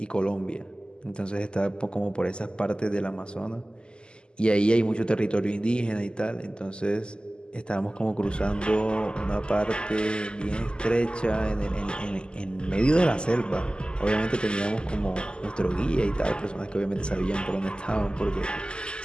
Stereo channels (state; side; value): late; right; 0.049 ms